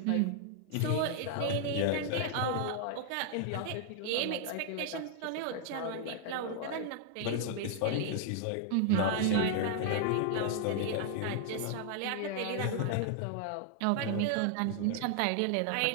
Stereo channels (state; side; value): different; both; correlation 0.00